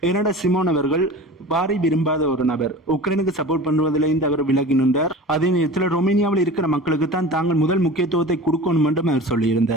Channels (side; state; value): both; normal; correlation 0.36